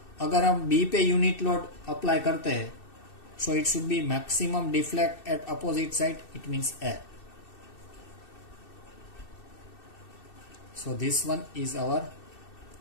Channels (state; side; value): late; right; 2.6 ms